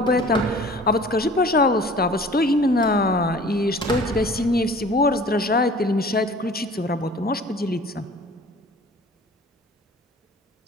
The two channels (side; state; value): both; normal; correlation 0.46